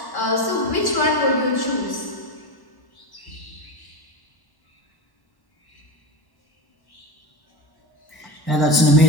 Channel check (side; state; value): right; late; 1.1 ms